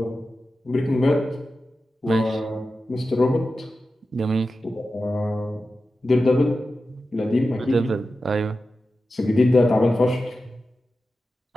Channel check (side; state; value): both; normal; correlation 0.92